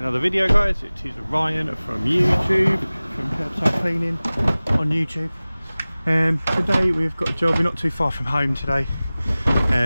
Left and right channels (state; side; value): inverted; both; correlation -0.98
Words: video, guys. It is Ryan from YouTube, from Kirbside Cleaning on YouTube. Today we've got a job. We're not too far from home today,